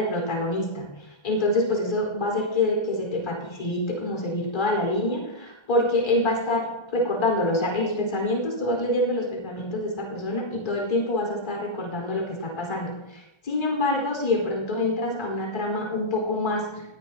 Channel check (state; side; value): late; right; 1.3 ms